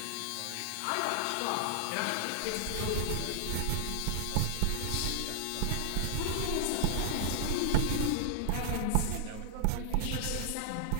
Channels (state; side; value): different; both; correlation 0.00